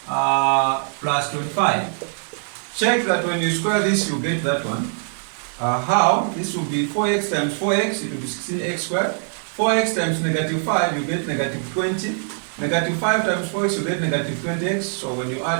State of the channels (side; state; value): left; silent; 64 dB below the other